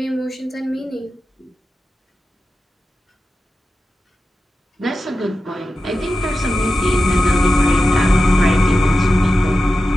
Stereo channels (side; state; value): both; normal; correlation 0.92